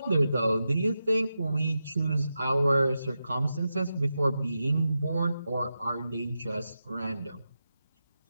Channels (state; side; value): inverted; both; correlation -0.90